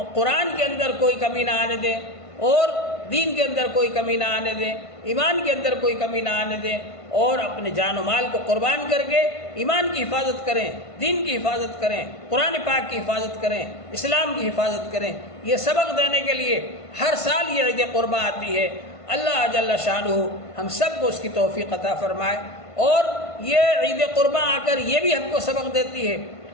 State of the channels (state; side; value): late; right; 1.5 ms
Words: قرآن کے اندر کوئی کمی نہ آنے دیں اور دین کے اندر کوئی کمی نہ آنے دیں، ایمان کے اندر کوئی کمی نہ آنے دیں، اور اپنے جان و مال کو قربان کر کے ایمان کی حفاظت کریں، دین کی حفاظت کریں، قرآن پاک کی حفاظت کریں، اسلام کی حفاظت کریں۔ یہ سبق دینے کے لیے ہر سال یہ عید قرباں آتی ہے۔ اللہ جل شانہ ہم سب کو اس کی توفیق عطا فرمائے، اور یہ عید قرباں آ کر یہ بھی ہم کو سبق دیتی ہے